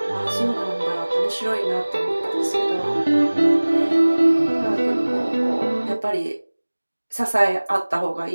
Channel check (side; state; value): both; inverted; correlation -1.00